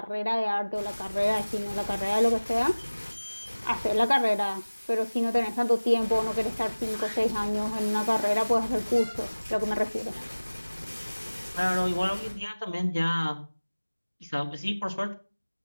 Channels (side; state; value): both; inverted; correlation -1.00